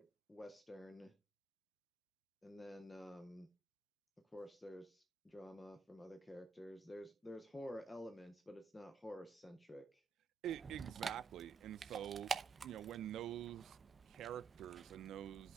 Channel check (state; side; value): quieter; left; 5.1 dB